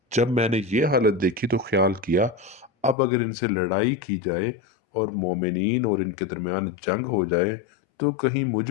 جب میں نے یہ حالت دیکھی تو خیال کیا، اب اگر ان سے لڑائی کی جائے اور مومنین اور ان کے درمیان جنگ ہو جائے تو کہیں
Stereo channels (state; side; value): drops out; right; at 3.0 s